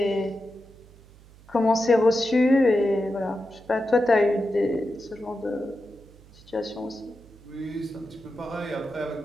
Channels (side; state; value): right; noise; hum, 24 dB below the sound